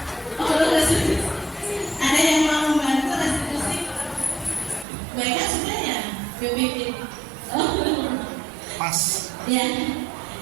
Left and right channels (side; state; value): left; drops out; at 4.9 s